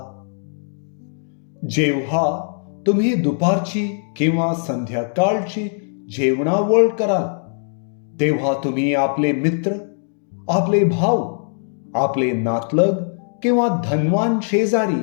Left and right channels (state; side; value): silent; right; digital silence